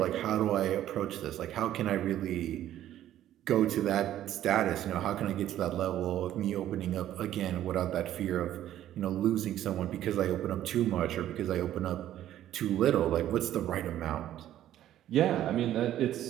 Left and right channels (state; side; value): quieter; left; 12.3 dB